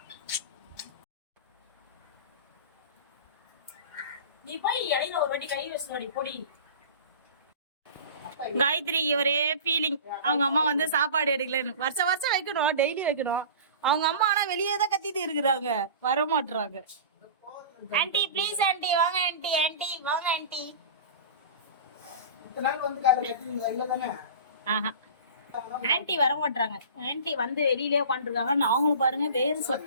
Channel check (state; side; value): inverted; both; correlation -0.35